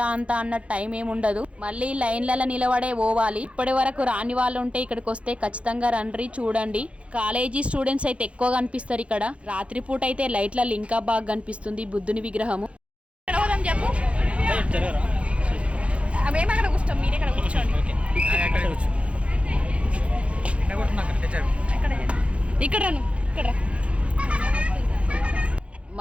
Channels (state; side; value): late; left; 0.061 ms